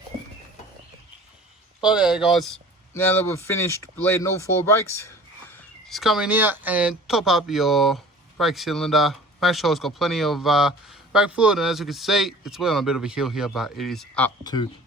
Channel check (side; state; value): both; normal; correlation 0.45